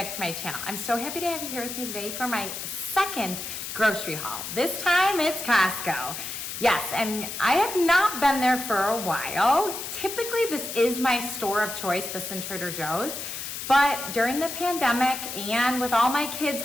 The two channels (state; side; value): noise; left; hiss, 7 dB below the sound